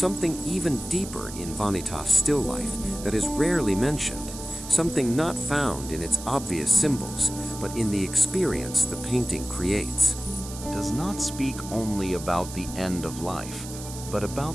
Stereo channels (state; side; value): noise; right; hiss, 12 dB below the sound